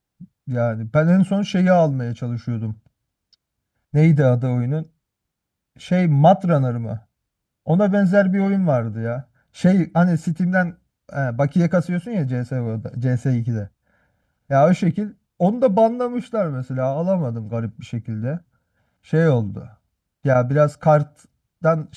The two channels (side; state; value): both; identical; correlation 1.00